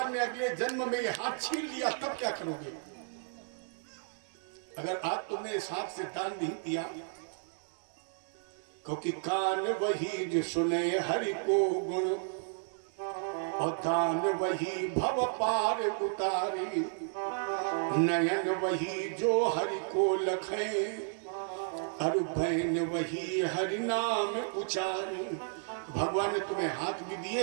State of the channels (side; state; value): left; silent; digital silence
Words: ने अगले जन्म में ये हाथ छीन लिया तब क्या करोगे? अगर आज तुमने इस हाथ से दान नहीं दिया, क्योंकि कान वही जो सुने हरि को गुण और दान वही भव पार उतारी, नयन वही जो हरि को लखे और भैन वही हरि नाम उचारी। भगवान ने तुम्हें हाथ भी दिए,